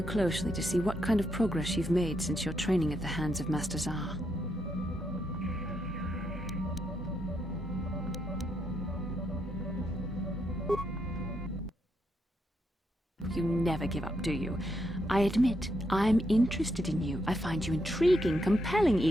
closely to see what kind of progress you've made since your training at the hands of Master Zar. You never give up, do you? I admit, I'm interested in you. I find you intriguing, compelling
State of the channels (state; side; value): normal; both; correlation 0.79